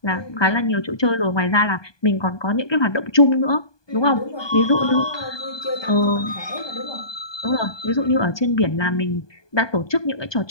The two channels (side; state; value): right; late; 1.2 ms